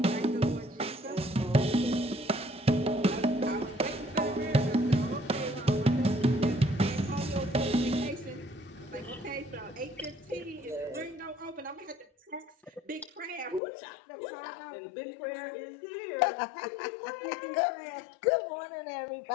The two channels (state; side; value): drops out; right; at 13.6 s